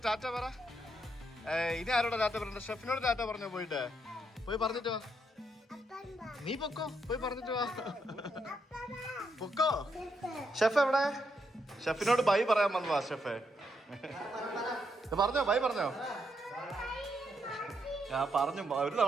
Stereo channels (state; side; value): normal; both; correlation 0.79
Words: ടാറ്റ പറ. ഇനി ആരോടെ ടാറ്റ പറയണ്ട? ഷെഫിനോട് ടാറ്റ പറഞ്ഞോ പോയിട്ട്. പോയി പറഞ്ഞിട്ട് വാ. നീ പൊക്കോ, പോയി പറഞ്ഞിട്ട് വാ. പൊക്കോ. ഷെഫ് എവിടെ? ഷെഫിനോട് ബൈ പറയാൻ വന്നതാ ഷെഫേ. പറഞ്ഞോ, ബൈ പറഞ്ഞോ. ഞാൻ പറഞ്ഞു ഒരു